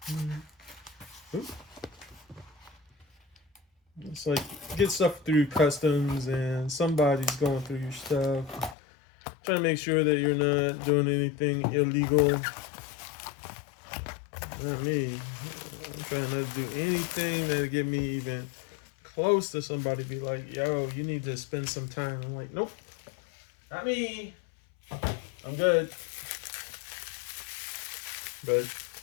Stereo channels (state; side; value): drops out; right; at 8.8 s